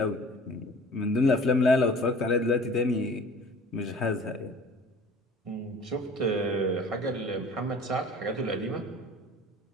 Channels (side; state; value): both; normal; correlation 0.46